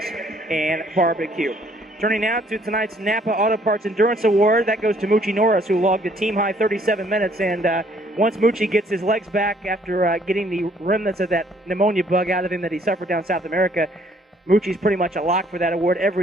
and Barbecue. Turning now to tonight's Napa Auto Parts Endurance Award. That goes to Moochie Norris, who logged a team-high 37 minutes. And once Moochie gets his legs back after getting the remnants of that pneumonia bug out of him that he suffered down South America, Moochie's pretty much a lock for that award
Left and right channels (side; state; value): both; normal; correlation 0.63